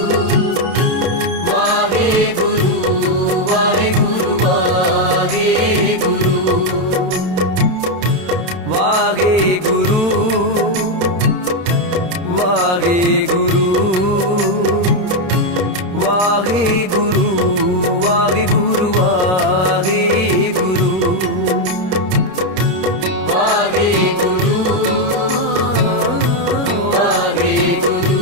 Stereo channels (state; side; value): late; left; 27 ms